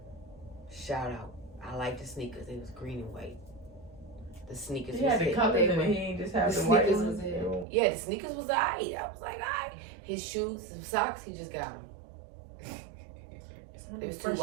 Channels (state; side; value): drops out; left; at 7.7 s